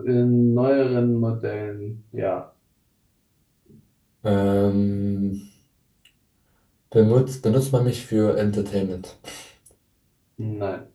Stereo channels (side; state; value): both; identical; correlation 1.00